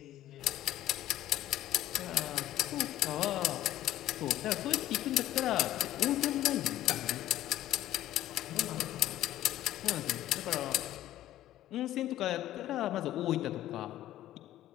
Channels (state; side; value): quieter; right; 13.6 dB